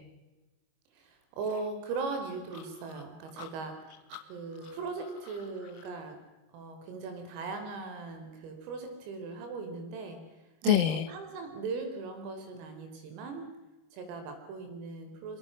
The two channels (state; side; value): late; left; 25 ms